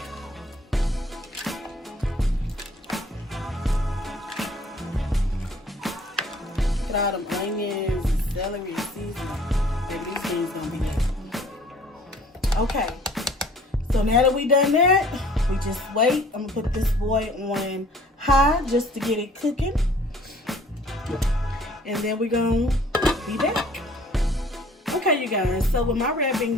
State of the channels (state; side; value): normal; both; correlation 0.54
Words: Get all them onions and celery and seasoning. Baby, these things gonna be good. Okay, so now that we done that, we just wait. I'm gonna put this boy on high just to get it cooking. And then we're gonna be back. Okay, you guys, so with my red